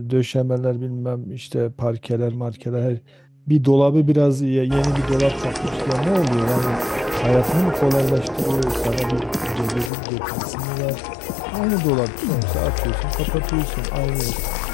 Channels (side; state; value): right; drops out; at 9.9 s